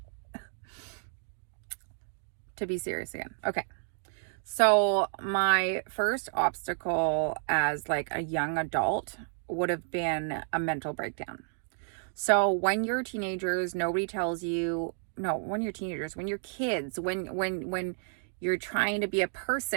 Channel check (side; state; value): left; silent; digital silence